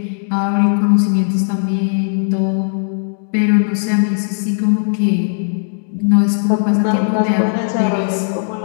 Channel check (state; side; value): silent; right; digital silence